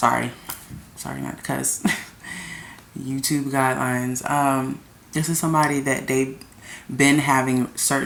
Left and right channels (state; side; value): identical; both; correlation 1.00